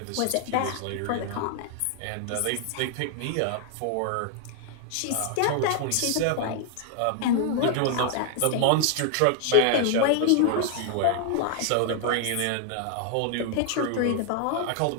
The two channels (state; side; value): different; both; correlation 0.00